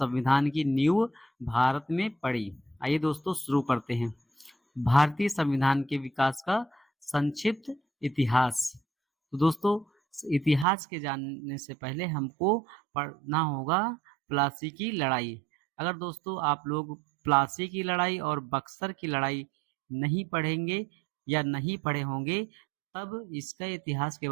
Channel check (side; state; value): left; drops out; at 10.7 s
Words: की नींव भारत में पड़ी। आइए दोस्तों, शुरू करते हैं। भारतीय संविधान के विकास का संक्षिप्त इतिहास। तो दोस्तों, इतिहास के जानने से पहले हमको पढ़ना होगा प्लासी की लड़ाई। अगर दोस्तों आप लोग प्लासी की लड़ाई और बक्सर की लड़ाई नहीं पढ़ेंगे या नहीं पढ़े होंगे, तब इसका इतिहास के